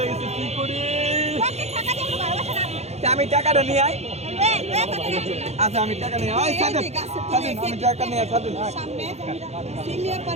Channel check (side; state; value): left; late; 0.31 ms